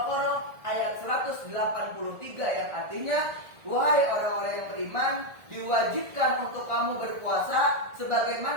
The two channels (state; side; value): late; left; 1.7 ms